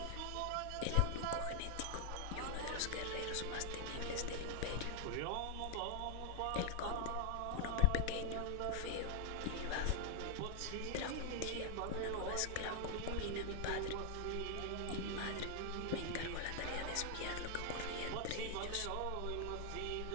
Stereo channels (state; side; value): different; both; correlation 0.00